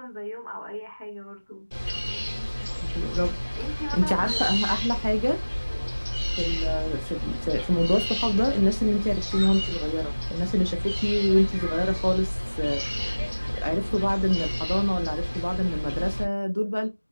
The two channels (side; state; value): both; inverted; correlation -1.00